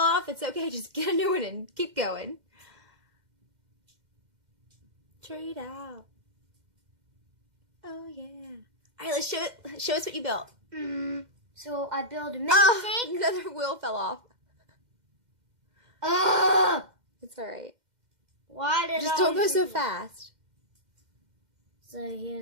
off, it's okay. Just get a new one and keep going. Trade out. Oh, yeah. All right, let's show us what you built. So I built a mini tank. Another wheel fell off. It's all right. Why did Just don't go so fast. So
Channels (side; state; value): left; late; 2.1 ms